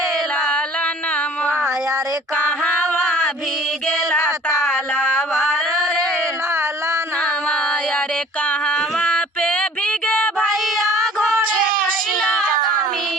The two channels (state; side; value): normal; both; correlation 0.50